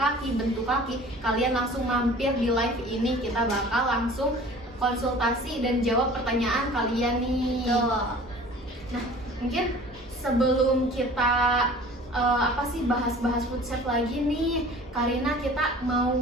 bentuk kaki, kalian langsung mampir di live ini. Kita bakal langsung konsultasi dan jawab pertanyaan kalian nih. Nah, mungkin sebelum kita bahas-bahas food chef lagi nih, Karina, kita mau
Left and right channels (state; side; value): normal; both; correlation 0.45